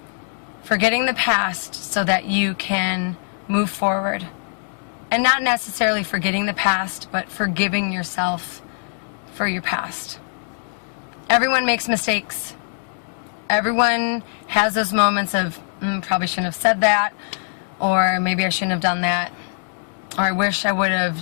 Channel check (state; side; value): silent; right; digital silence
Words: Forgetting the past so that you can move forward. And not necessarily forgetting the past, but forgiving yourself for your past. Everyone makes mistakes. Everyone has those moments of, probably shouldn't have said that, or maybe I shouldn't have done that, or I wish I would